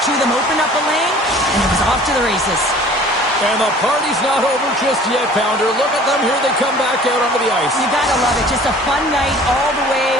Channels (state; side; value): normal; both; correlation 0.49